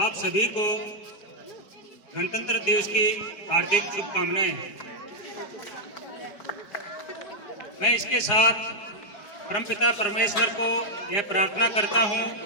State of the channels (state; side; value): late; right; 4.8 ms